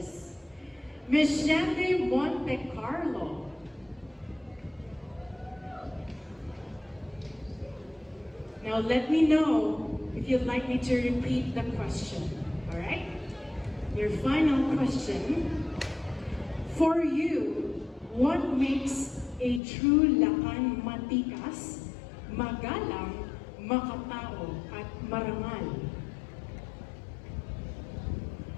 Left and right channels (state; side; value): drops out; right; at 19.6 s